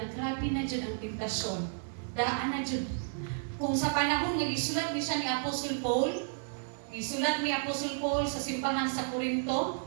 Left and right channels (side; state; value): left; silent; 56 dB below the other